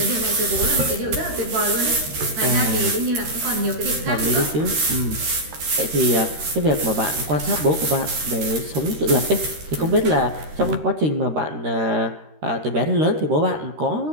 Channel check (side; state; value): left; late; 13 ms